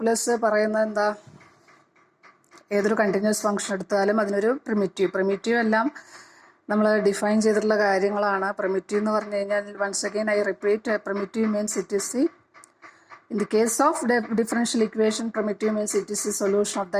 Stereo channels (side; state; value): both; identical; correlation 1.00